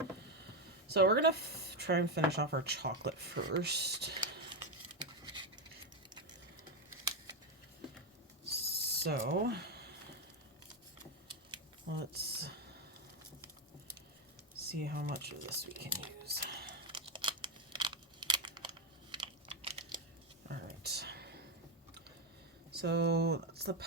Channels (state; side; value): normal; both; correlation 0.08